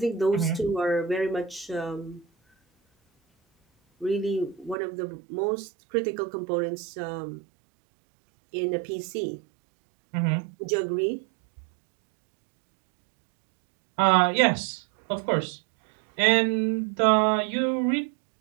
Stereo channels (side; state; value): left; drops out; at 4.8 s